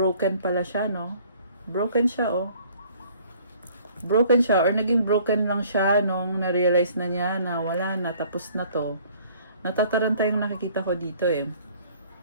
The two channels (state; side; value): inverted; both; correlation -0.56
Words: pala siya, no? Broken siya, oh. Broken siya, or naging broken lang siya nung na-realize na niya na wala na, tapos na to. Natataranta yung nakikita ko dito, eh.